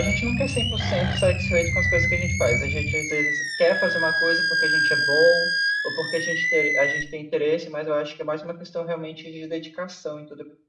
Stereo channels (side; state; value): both; identical; correlation 1.00